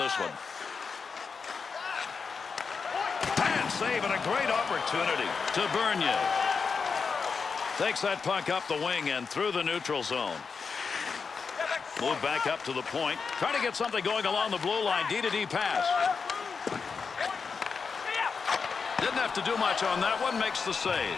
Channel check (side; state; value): right; quieter; 5.3 dB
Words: one. And save and a great opportunity to Bernier. Takes that puck up the wing and through the neutral zone. Move back up to the point. Trying to get something going along the blue line. D-to-D pass. Didn't have to do much on that one. Makes the save.